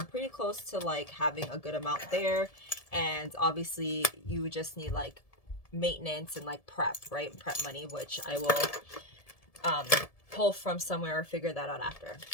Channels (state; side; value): late; right; 1.7 ms